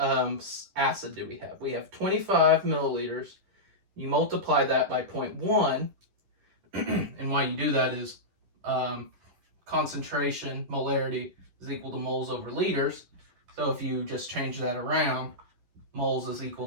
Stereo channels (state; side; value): late; left; 10 ms